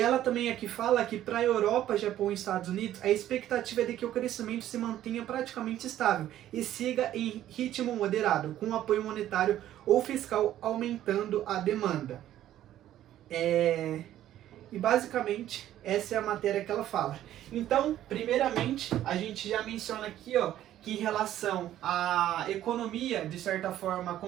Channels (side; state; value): left; quieter; 12.5 dB